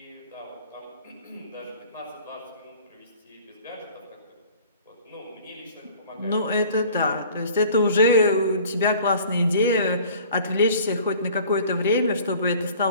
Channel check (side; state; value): both; inverted; correlation -0.48